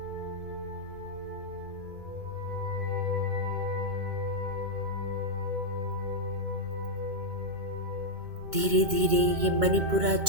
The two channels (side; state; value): left; late; 2.2 ms